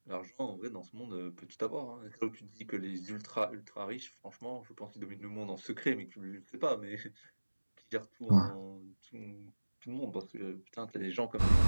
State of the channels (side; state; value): both; inverted; correlation -1.00